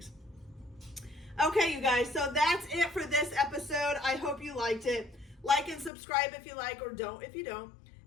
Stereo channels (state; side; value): drops out; right; at 5.9 s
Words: Okay, you guys, so that's it for this episode. I hope you liked it. Like and subscribe if you like, or don't if you don't.